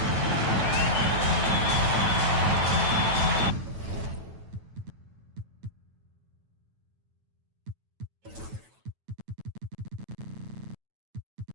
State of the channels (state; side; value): late; left; 9.1 ms